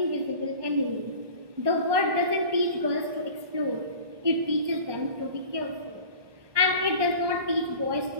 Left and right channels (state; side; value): late; left; 1.2 ms